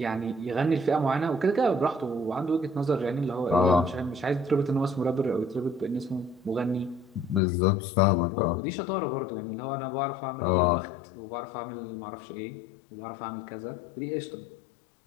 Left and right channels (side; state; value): right; drops out; at 7.4 s